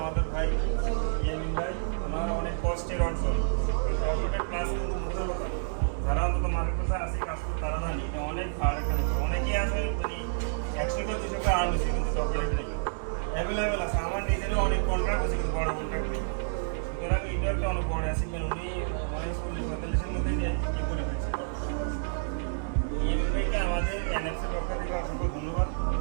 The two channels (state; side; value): silent; left; digital silence